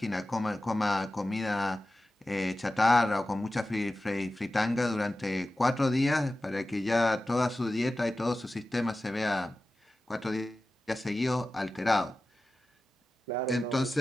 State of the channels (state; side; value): normal; both; correlation 0.94